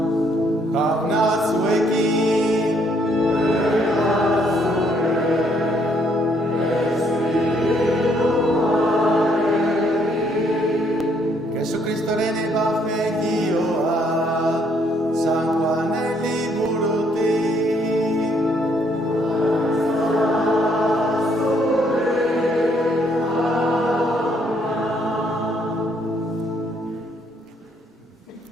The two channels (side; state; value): both; normal; correlation 0.69